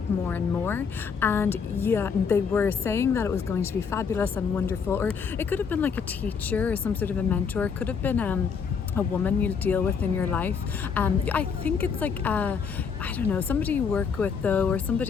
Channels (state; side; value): quieter; right; 6.1 dB